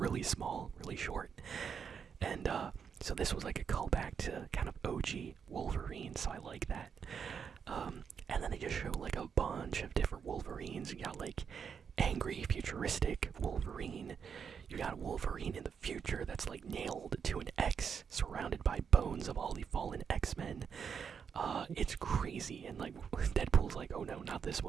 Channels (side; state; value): left; quieter; 6.8 dB